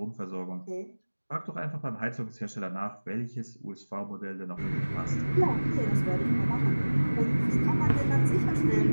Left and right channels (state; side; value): inverted; both; correlation -1.00